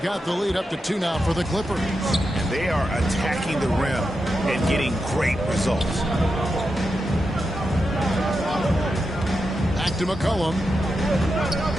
the lead up to 2 now for the Clippers. And they are attacking the rim and getting great results. Back to McCollum.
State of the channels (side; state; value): both; normal; correlation 0.88